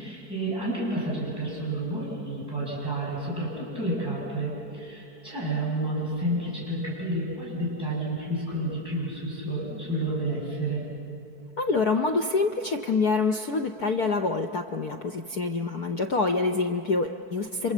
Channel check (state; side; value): late; right; 4.6 ms